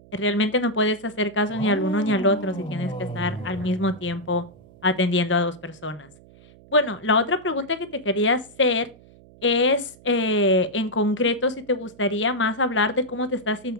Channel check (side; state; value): right; noise; hum, 24 dB below the sound